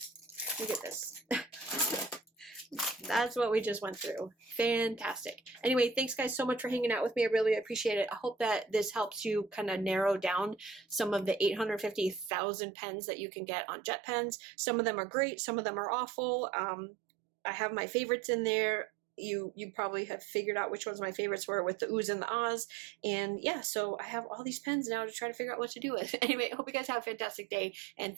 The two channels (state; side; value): drops out; left; at 12.3 s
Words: Look at this. That's what we just went through. Fantastic. Anyway, thanks guys so much for hanging out with me. I really appreciate it. I hope that this helps you kind of narrow down some of the 850,000 pens that you can get on Jet Pens. Some of them are great. Some of them are awful. I have my favorites in there. You probably have figured out which ones my favorites were with the oohs and the ahs. And yeah, so I have all these pens now to try to figure out what to do with. Anyway, I hope you guys have a fantastic day. And